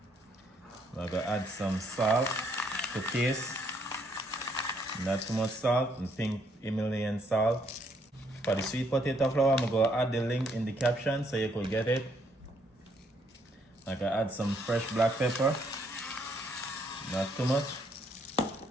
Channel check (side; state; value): both; normal; correlation 0.70